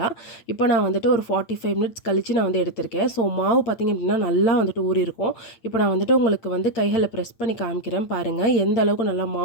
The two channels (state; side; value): late; right; 8.8 ms